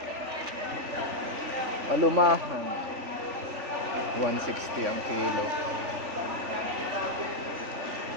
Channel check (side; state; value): left; late; 3.4 ms